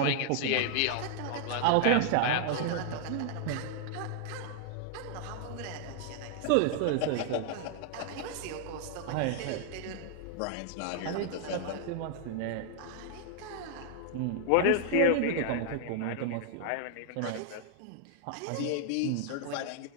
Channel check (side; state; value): both; different; correlation 0.00